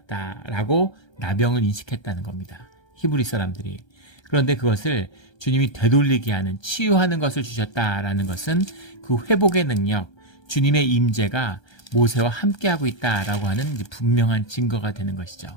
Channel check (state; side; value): late; right; 1.3 ms